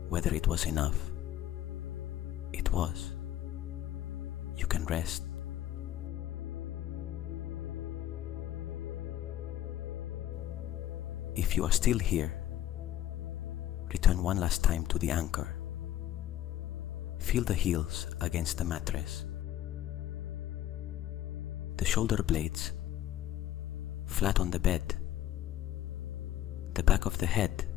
whether it was enough. It was. You can rest. If you are still here, return one last time to the anchor. Feel the heels against the mattress. The shoulder blades flat on the bed. The back of the head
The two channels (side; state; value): right; quieter; 12.5 dB